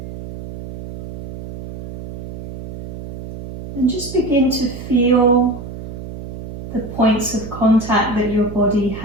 And just begin to feel the points of contact that your body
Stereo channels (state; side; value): noise; right; hum, 11 dB below the sound